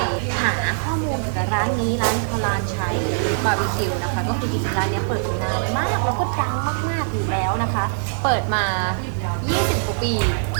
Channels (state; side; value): silent; left; digital silence